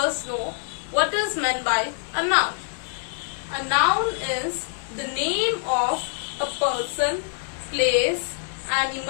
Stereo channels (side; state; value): right; silent; digital silence